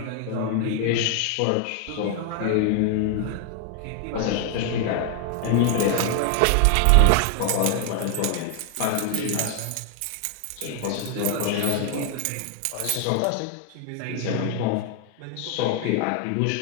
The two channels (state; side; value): different; both; correlation 0.00